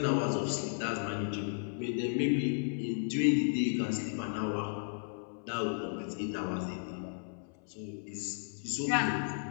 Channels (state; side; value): silent; right; 55 dB below the other